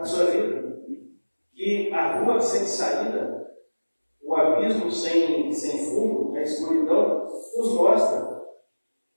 sua vida. Que a rua sem saída, o abismo sem fundo, a escuridão, nos mostra.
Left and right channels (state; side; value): inverted; both; correlation -1.00